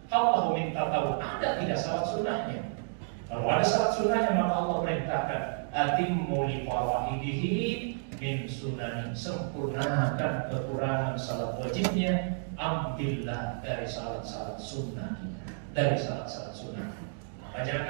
Allah minta tahu ada tidak salat sunnahnya. Kalau ada salat sunnahnya, maka Allah perintahkan, atimmu li faraidihi min sunani, sempurnakan kekurangan salat wajibnya, ambillah dari salat-salat sunnah, dari salat-salat sunnah. Maka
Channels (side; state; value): left; silent; digital silence